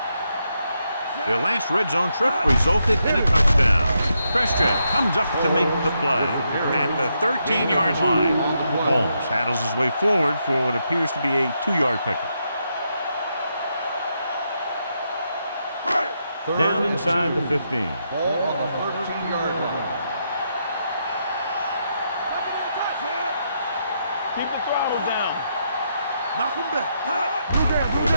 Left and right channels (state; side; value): inverted; both; correlation -0.80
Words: Their last red zone trip resulted in a touchdown. Christian comes up to make the play at the 13-yard line. Holmes handles his way forward for what appears to be a 2-yard pickup. Down inside the 15. Ball on the 13-yard line. Keep the throttle down. Knock him back. Go